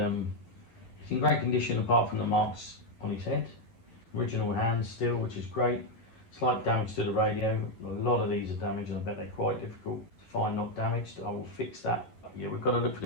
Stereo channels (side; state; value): right; late; 11 ms